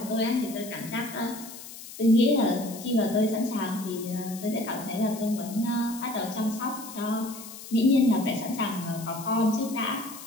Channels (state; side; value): noise; left; hiss, 14 dB below the sound